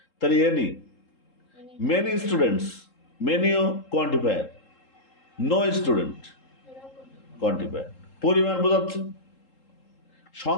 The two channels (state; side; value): late; right; 3.7 ms